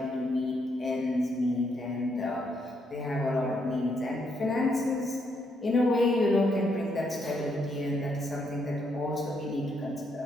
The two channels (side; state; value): both; normal; correlation 0.76